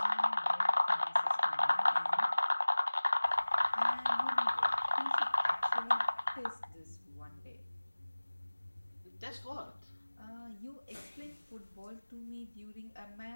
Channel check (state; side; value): inverted; both; correlation -1.00